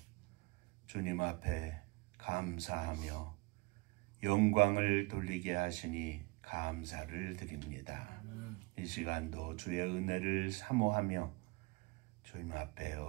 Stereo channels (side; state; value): left; quieter; 25.6 dB